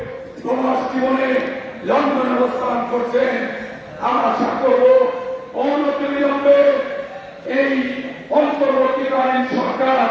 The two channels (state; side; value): identical; both; correlation 1.00